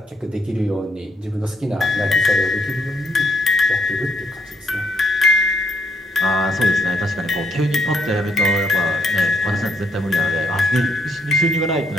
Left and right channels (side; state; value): both; normal; correlation 0.71